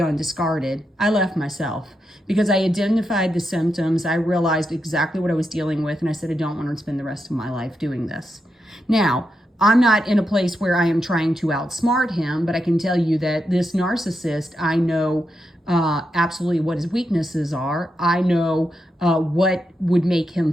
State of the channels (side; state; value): both; normal; correlation 0.85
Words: and discarded. I left myself. because I identified the symptoms. I realized exactly what I was dealing with, and I said, I don't want to spend the rest of my life doing this. Now, I'm not in a place where I am trying to outsmart him, but I can tell you that this narcissist, I know absolutely what his weaknesses are. I know what would make him